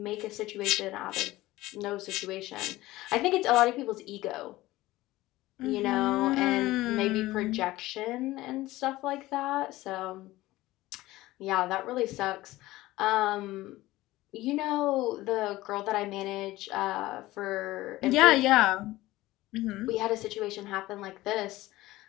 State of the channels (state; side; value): quieter; right; 17.7 dB